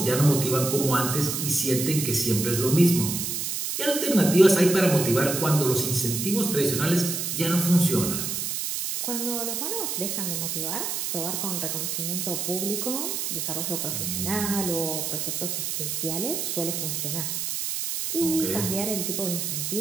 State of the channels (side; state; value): right; noise; hiss, 2 dB below the sound